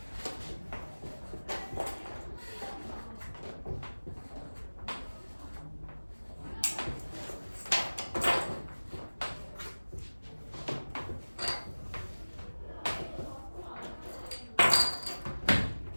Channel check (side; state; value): both; inverted; correlation -1.00